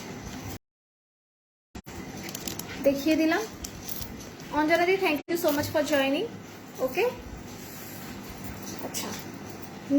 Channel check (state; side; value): identical; both; correlation 1.00